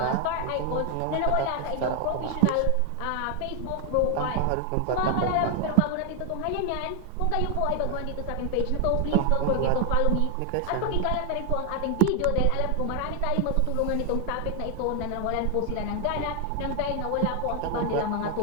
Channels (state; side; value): different; both; correlation 0.01